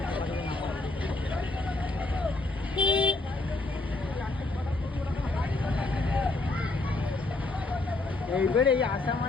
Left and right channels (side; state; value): right; quieter; 3.0 dB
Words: এইবার এই আসা